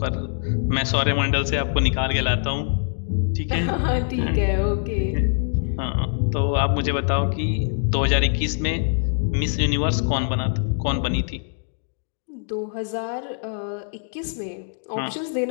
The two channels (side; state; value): right; silent; digital silence